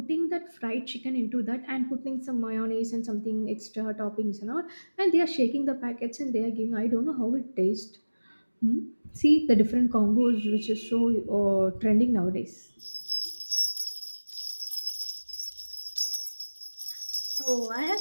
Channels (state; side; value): inverted; both; correlation -1.00